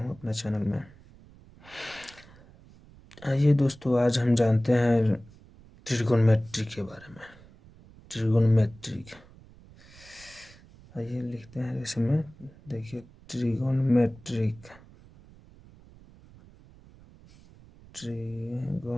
अपने चैनल में। आइए दोस्तों, आज हम जानते हैं ट्रिगोनोमेट्री के बारे में। ट्रिगोनोमेट्री, आइए लिखते हैं इसमें। देखिए, ट्रिगोनोमेट्रिक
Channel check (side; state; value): right; noise; rumble, 23 dB below the sound